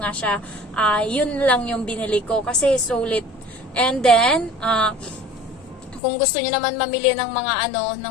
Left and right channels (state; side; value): drops out; right; at 6.0 s